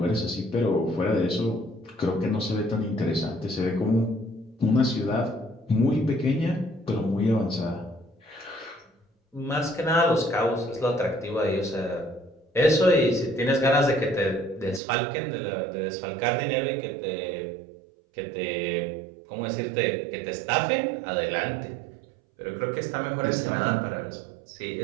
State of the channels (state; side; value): drops out; left; at 14.8 s